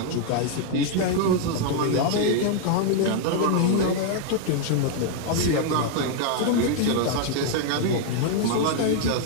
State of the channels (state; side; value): different; both; correlation 0.00